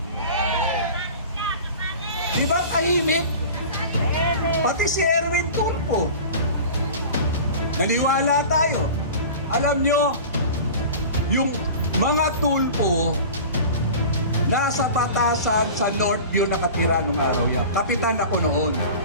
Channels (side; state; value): both; inverted; correlation -0.37